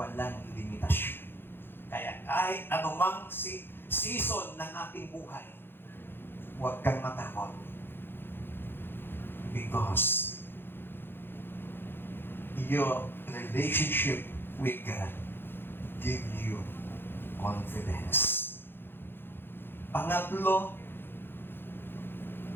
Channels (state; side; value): late; right; 0.10 ms